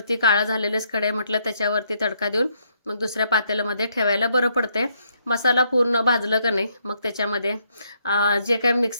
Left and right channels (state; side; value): inverted; both; correlation -0.73